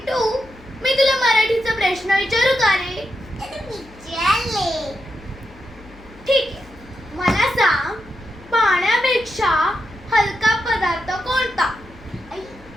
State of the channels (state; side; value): noise; left; hum, 23 dB below the sound